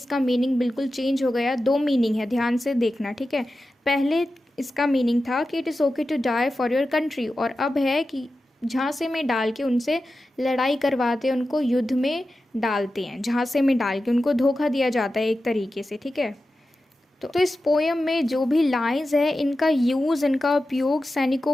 मीनिंग बिल्कुल चेंज हो गया। दो मीनिंग है, ध्यान से देखना। ठीक है, पहले इसका मीनिंग था कि it is okay to die for your country, और अब है कि झांसे में डाल के उनसे लड़ाई करवाते हैं, उनको युद्ध में डालते हैं, झांसे में डाल के उनको धोखा दिया जाता है एक तरीके से। ठीक है, तो इस पोयम में जो भी लाइंस है इनका यूज़, इनका उपयोग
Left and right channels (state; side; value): normal; both; correlation 0.93